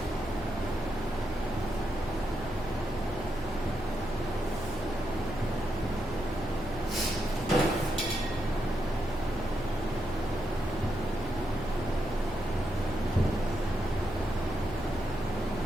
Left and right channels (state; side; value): noise; left; hum, 14 dB below the sound